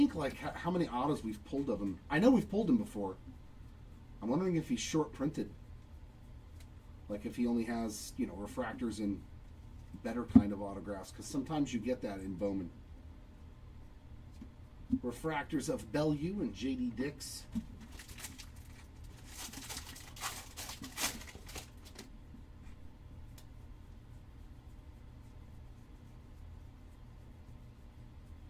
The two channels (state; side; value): identical; both; correlation 1.00